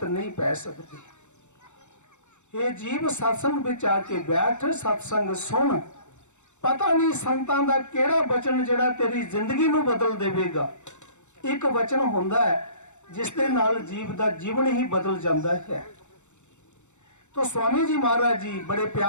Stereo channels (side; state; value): right; late; 0.84 ms